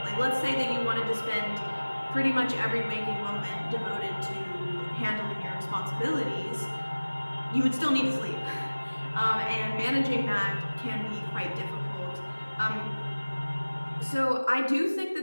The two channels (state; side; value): inverted; both; correlation -1.00